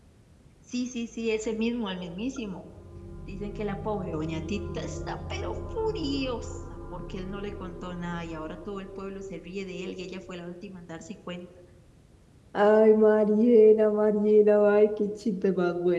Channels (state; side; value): identical; both; correlation 1.00